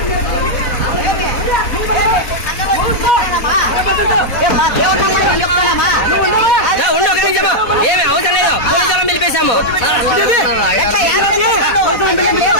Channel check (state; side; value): late; right; 4.1 ms